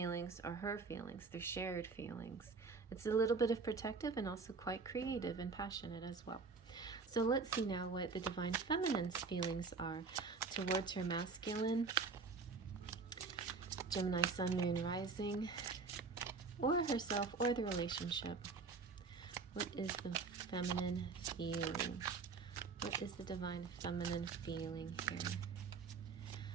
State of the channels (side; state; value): left; quieter; 4.6 dB